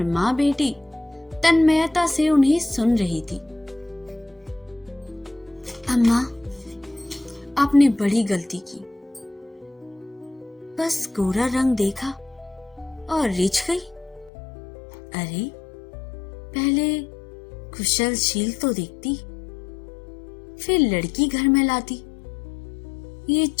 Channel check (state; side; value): drops out; right; at 14.3 s